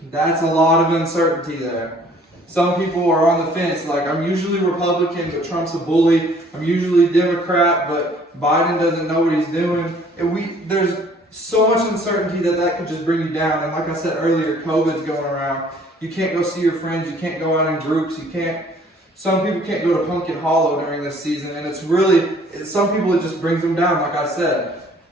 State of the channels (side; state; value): both; normal; correlation 0.57